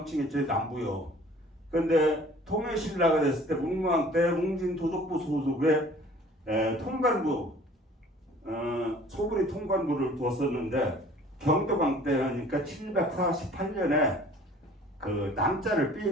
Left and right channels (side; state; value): both; normal; correlation 0.51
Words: 남부요. 그런데 통일신라가 됐을 때 문무왕 때 웅진도독부 소속의 통관부 소부리 통관부를 두었었는데 경도강 때니까 748년에 그 남자를